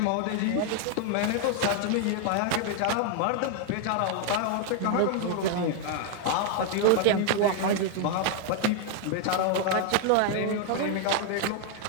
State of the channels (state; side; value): different; both; correlation 0.00